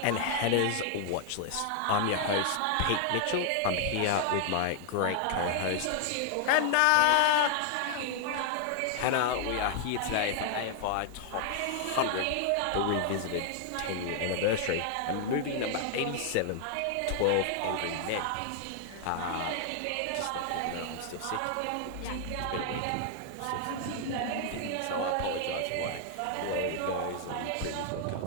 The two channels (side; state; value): both; different; correlation 0.00